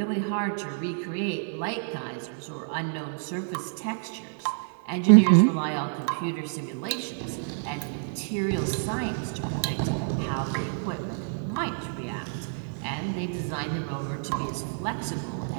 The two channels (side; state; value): left; silent; 59 dB below the other